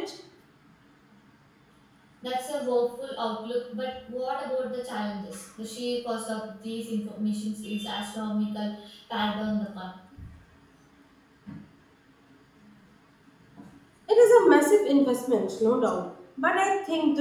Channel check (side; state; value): both; identical; correlation 1.00